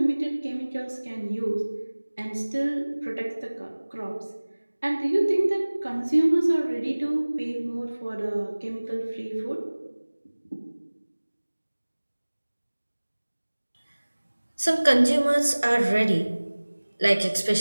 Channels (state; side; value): inverted; both; correlation -1.00